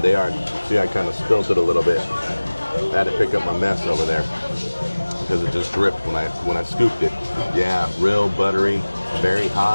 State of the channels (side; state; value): both; inverted; correlation -1.00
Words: are. See, I kind of spilled it a little bit. I had to pick up my mess over there because it just dripped when I scooped it. Yeah, real buttery, very